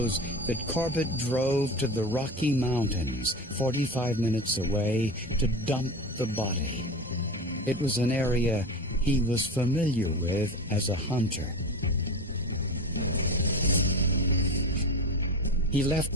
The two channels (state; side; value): normal; both; correlation 0.27